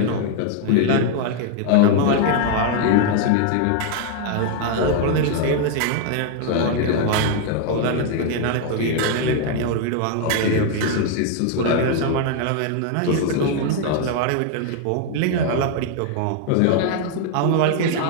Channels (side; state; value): both; different; correlation 0.00